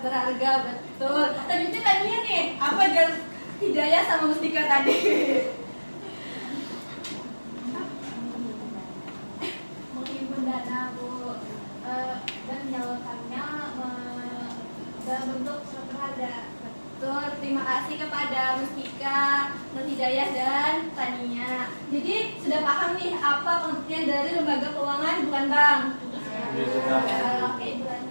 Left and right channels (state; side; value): inverted; both; correlation -1.00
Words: berharga, betul. Selanjutnya tadinya nih, apa jalan Hidayah sama Mustika tadi? Menghimpun dana Bu dan menyalurkannya dalam bentuk surat berharga. Betul, terima kasih kepada Mustika, Nur Hidayah, dan Tania. Jadi sudah paham nih apa pengertian dari lembaga keuangan bukan bank? Ya, sudah. Oke,